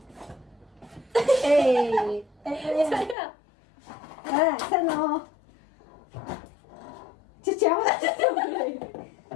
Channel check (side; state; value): right; drops out; at 3.2 s